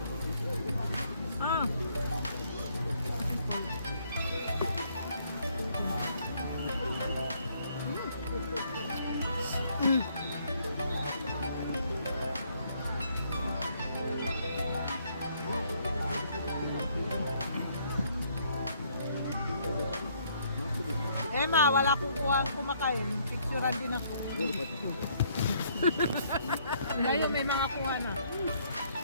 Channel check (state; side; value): inverted; both; correlation -0.67